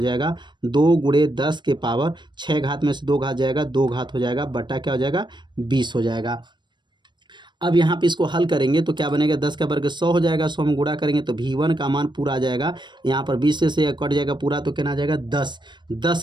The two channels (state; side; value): late; left; 0.22 ms